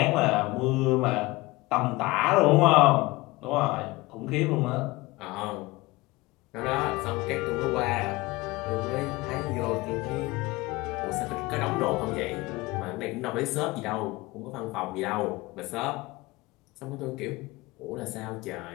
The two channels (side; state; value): right; quieter; 21.5 dB